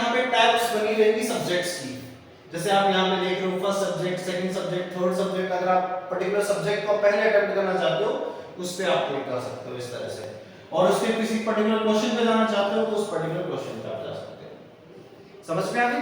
पे टैब्स बनी रहेंगी सब्जेक्ट्स की, जैसे आप यहाँ पे देख रहे हो first subject, second subject, third subject. अगर आप पर्टिकुलर सब्जेक्ट को पहले अटेम्प्ट करना चाहते हो उस पे आप क्लिक कर सकते हो इस तरह से, और उसके किसी पर्टिकुलर क्वेश्चन पे जाना चाहते हो तो उस पर्टिकुलर क्वेश्चन पे आप जा सकते हो। समझ में आ गई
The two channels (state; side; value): identical; both; correlation 1.00